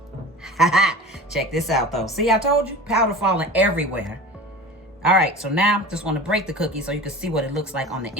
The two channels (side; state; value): both; normal; correlation 0.36